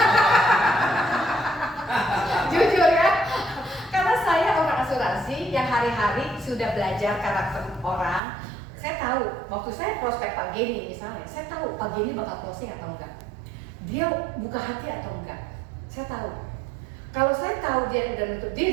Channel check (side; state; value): left; drops out; at 8.2 s